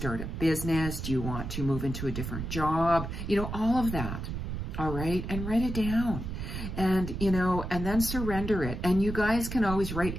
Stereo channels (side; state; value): right; noise; rumble, 5 dB below the sound